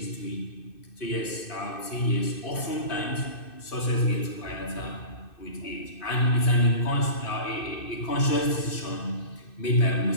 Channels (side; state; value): right; late; 2.6 ms